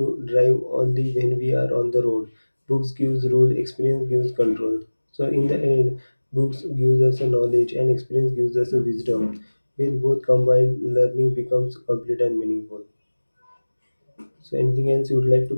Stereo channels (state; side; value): inverted; both; correlation -1.00